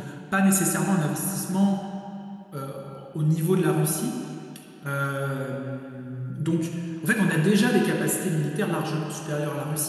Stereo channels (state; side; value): identical; both; correlation 1.00